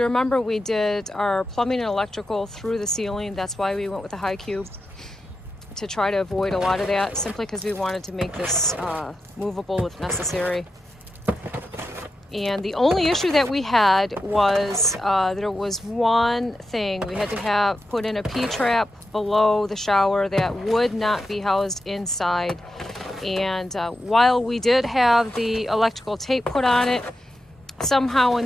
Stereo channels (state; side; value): normal; both; correlation 0.89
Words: remember, we did our plumbing and electrical through the ceiling. That's why we went with a high cube, to try to avoid a lot of that, simply because we wanted to make this movable if necessary. And the only issue that we had was there was one thing. We had to put in a P-trap below the shower that would not be housed inside. And while we did have the electrical tape put on it, somehow in